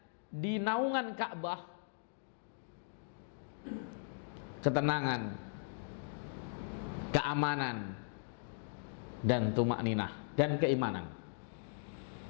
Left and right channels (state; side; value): silent; right; digital silence